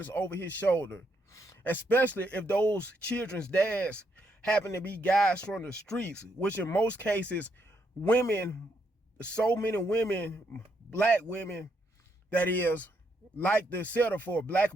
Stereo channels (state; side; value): normal; both; correlation 0.76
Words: over his shoulder, especially if those children's dads happen to be guys from the streets, which in most cases, women, so many women, black women, that is, like to settle for black